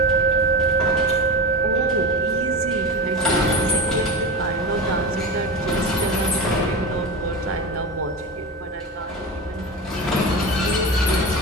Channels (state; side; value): normal; both; correlation 0.24